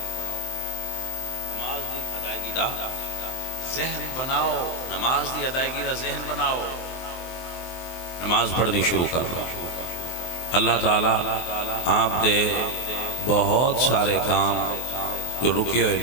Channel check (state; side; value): late; right; 23 ms